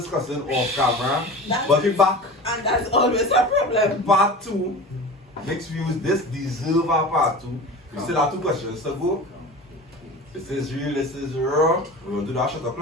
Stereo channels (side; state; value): both; normal; correlation 0.34